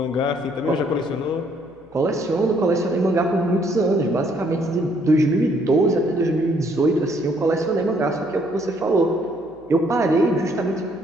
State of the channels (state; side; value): noise; left; hum, 29 dB below the sound